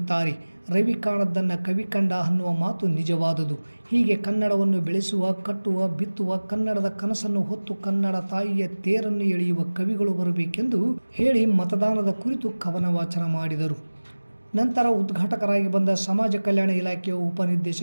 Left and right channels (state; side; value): inverted; both; correlation -1.00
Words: ರವಿ ಕಾಣದ್ದನ್ನು ಕವಿ ಕಂಡ ಅನ್ನುವ ಮಾತು ನಿಜವಾದುದು. ಹೀಗೆ ಕನ್ನಡವನ್ನು ಬೆಳೆಸುವ, ಕಟ್ಟುವ, ಬಿತ್ತುವ, ಕನ್ನಡದ ಕನಸನ್ನು ಹೊತ್ತು ಕನ್ನಡ ತಾಯಿಯ ತೇರನ್ನು ಎಳೆಯುವ ಕವಿಗಳು ಬರಬೇಕೆಂದು ಹೇಳಿ ಮತದಾನದ ಕುರಿತು ಕವನ ವಾಚನ ಮಾಡಿದರು. ನಂತರ ಉದ್ಘಾಟಕರಾಗಿ ಬಂದ ಸಮಾಜ ಕಲ್ಯಾಣ ಇಲಾಖೆಯ